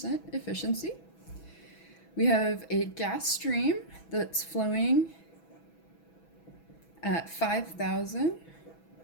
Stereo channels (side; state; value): right; late; 6.1 ms